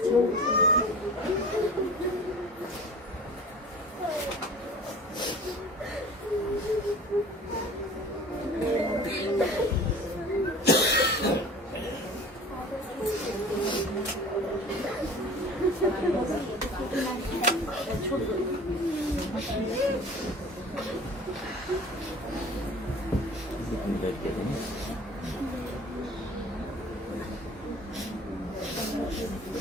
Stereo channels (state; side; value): normal; both; correlation 0.42